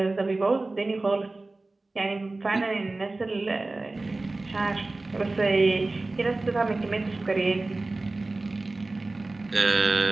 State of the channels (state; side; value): quieter; left; 3.1 dB